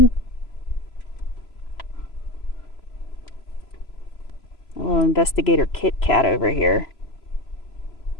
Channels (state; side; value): late; right; 3.0 ms